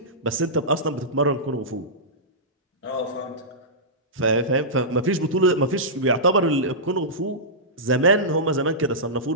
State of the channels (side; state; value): both; normal; correlation -0.15